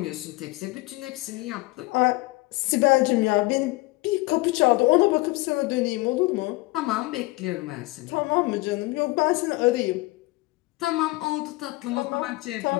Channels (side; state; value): right; quieter; 22.1 dB